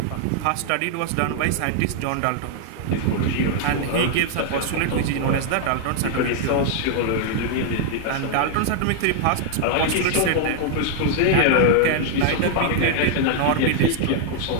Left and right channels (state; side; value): different; both; correlation -0.01